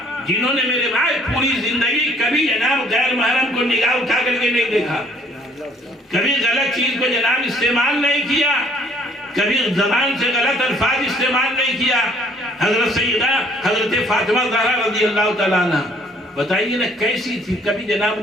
جنہوں نے میرے بھائی پوری زندگی کبھی جناب غیر محرم کو نگاہ اٹھا کر کے نہیں دیکھا، کبھی غلط چیز کو جناب استعمال نہیں کیا، کبھی زبان سے غلط الفاظ استعمال نہیں کیا۔ حضرت سیدہ حضرت فاطمہ زہرا رضی اللہ تعالیٰ عنہ، بتائیے نا کیسی تھی، کبھی جناب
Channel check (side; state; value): both; normal; correlation 0.60